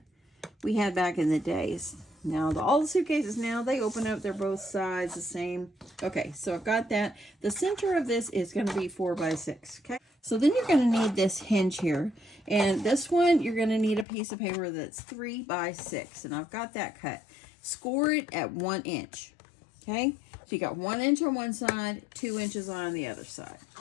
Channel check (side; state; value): right; drops out; at 14.1 s